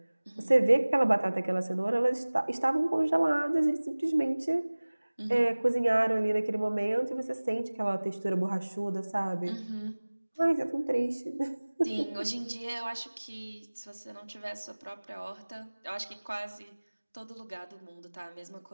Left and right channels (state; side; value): inverted; both; correlation -1.00